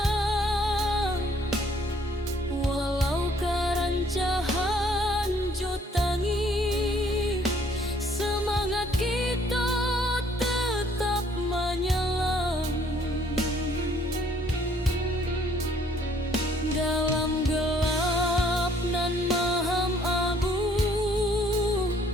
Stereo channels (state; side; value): normal; both; correlation 0.62